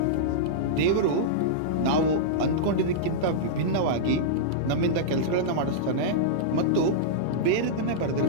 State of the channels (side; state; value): both; different; correlation -0.03